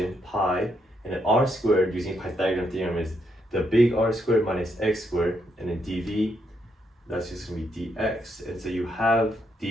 pi and then r squared using Pythagorean theorem is the big R squared minus x squared, and then dv, that's just gonna be dx. And so you have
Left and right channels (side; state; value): both; normal; correlation 0.77